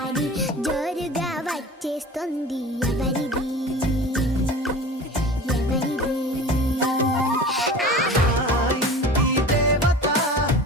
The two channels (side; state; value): both; normal; correlation 0.37